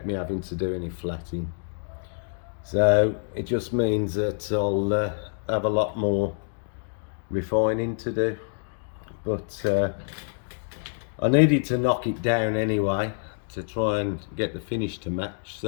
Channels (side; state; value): right; silent; digital silence